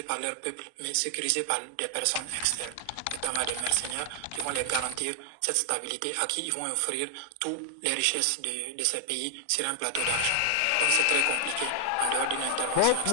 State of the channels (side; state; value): both; different; correlation 0.00